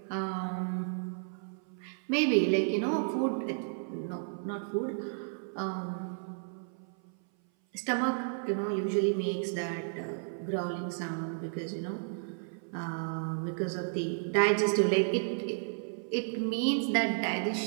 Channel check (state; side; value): silent; left; 56 dB below the other